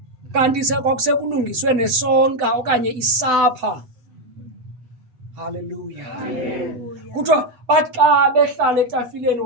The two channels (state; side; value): late; left; 7.9 ms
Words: kanti kwakusekulungiswe nesonka okanye isapha. Haleluya. Kuthiwa bathi xa behlala etafileni